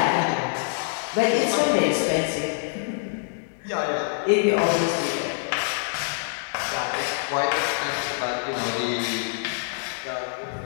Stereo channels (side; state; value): right; silent; 62 dB below the other